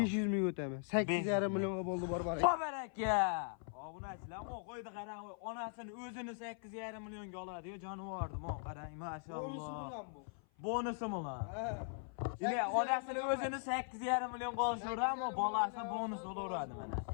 ming o'taman. 8,5 millionga bo'ldi barbaraka. Baraka. Obunachilar, mo qo'ydi qarang, onasini o'zini 8,5 millionga oladi-yu, jonivordi, mo qarang, mashalloh. Bonusi bilan bu. Bonusi bilan. Ha. Yine onasini o'zini 8,5 millionga olishadi-mu, bolasi bonus olaveradi mana.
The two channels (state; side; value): silent; right; 51 dB below the other